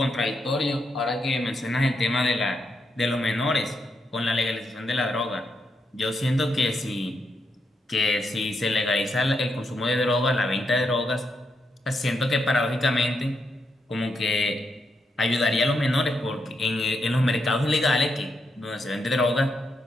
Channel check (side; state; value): both; normal; correlation 0.82